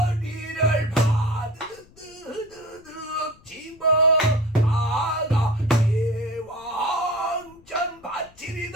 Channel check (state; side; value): noise; left; rumble, 27 dB below the sound